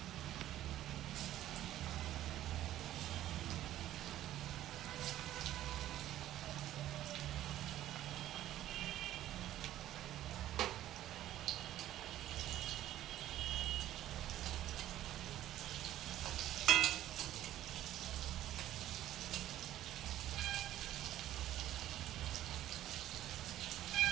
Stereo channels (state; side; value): quieter; left; 13.2 dB